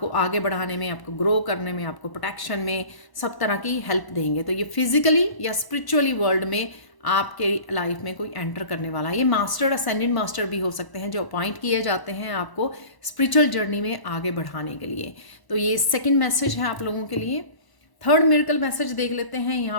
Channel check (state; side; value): late; right; 1.0 ms